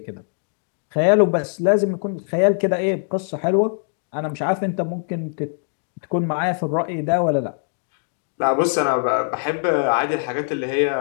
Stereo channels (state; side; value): silent; right; 57 dB below the other